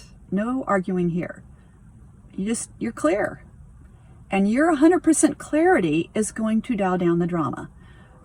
No arguing here. You're clear. And your 100% clarity is going to dial down the drama.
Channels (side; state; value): both; identical; correlation 1.00